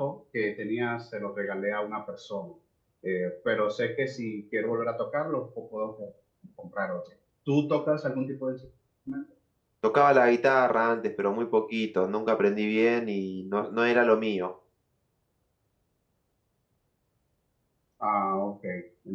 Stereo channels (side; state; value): both; identical; correlation 1.00